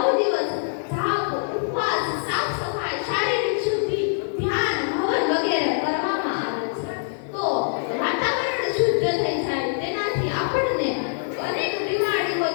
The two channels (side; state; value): right; silent; digital silence